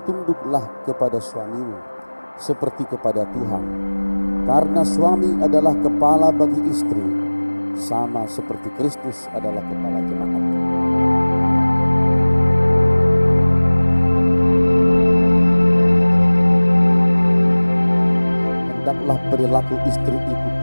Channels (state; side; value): inverted; both; correlation -1.00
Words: tunduklah kepada suamimu seperti kepada Tuhan, karena suami adalah kepala bagi istri, sama seperti Kristus adalah kepala jemaat. Hendaklah perilaku istri itu